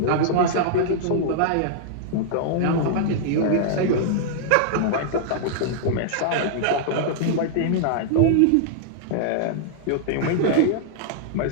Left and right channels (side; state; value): both; different; correlation -0.01